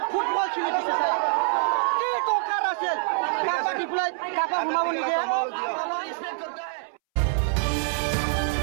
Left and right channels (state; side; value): silent; left; 61 dB below the other